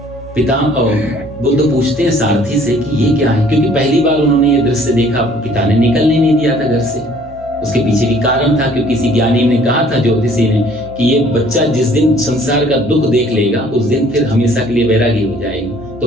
पिता और बुद्ध पूछते हैं सारथी से कि ये क्या है, क्योंकि पहली बार उन्होंने ये दृश्य देखा, पिता ने निकलने नहीं दिया था घर से। उसके पीछे भी कारण था, क्योंकि किसी ज्ञानी ने कहा था, ज्योतिषी ने, कि ये बच्चा जिस दिन संसार का दुख देख लेगा उस दिन फिर हमेशा के लिए वैरागी हो जाएगा।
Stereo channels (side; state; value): both; normal; correlation 0.57